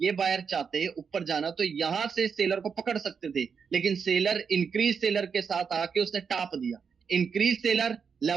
बायर चाहते ऊपर जाना, तो यहां से सेलर को पकड़ सकते थे, लेकिन सेलर इंक्रीज सेलर के साथ आके उसने टाप दिया। इंक्रीज सेलर,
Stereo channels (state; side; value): quieter; left; 6.2 dB